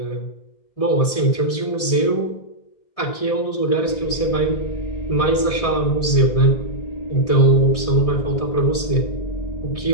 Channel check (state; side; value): late; right; 1.7 ms